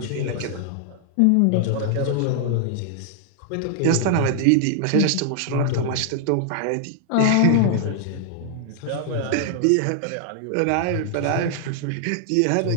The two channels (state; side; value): different; both; correlation 0.00